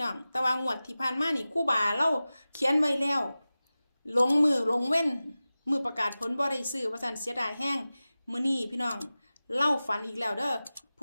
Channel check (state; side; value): inverted; both; correlation -0.96